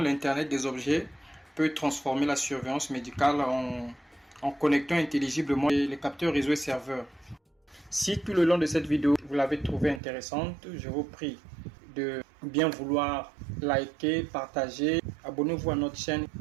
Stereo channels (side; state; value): left; drops out; at 10.0 s